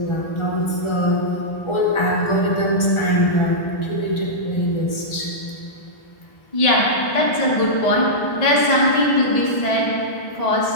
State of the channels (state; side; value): late; right; 1.4 ms